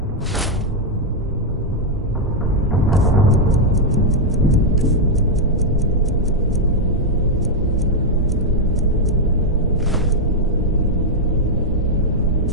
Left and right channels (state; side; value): normal; both; correlation -0.01